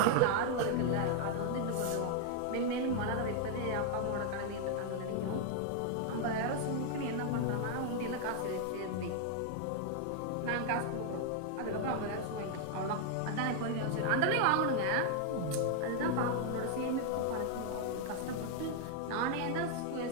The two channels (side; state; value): both; different; correlation 0.00